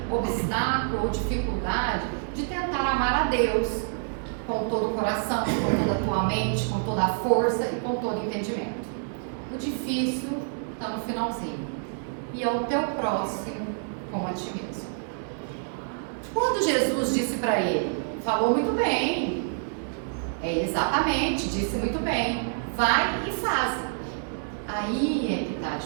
obstáculo ou dificuldade de tentar amar a Deus com todo o coração, com toda a tua mente, com toda a força e com todo o entendimento. O difícil está no finalzinho. E ao teu próximo como a ti mesmo. Quando Jesus disse para ele, falou muito bem, exatamente, disse muito bem, vai e faze. Aí é que está a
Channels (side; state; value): left; silent; digital silence